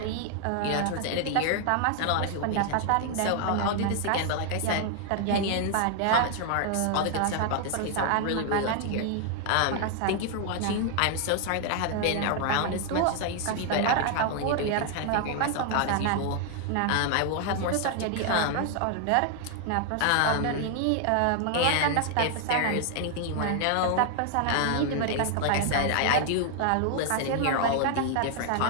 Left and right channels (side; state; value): both; different; correlation 0.00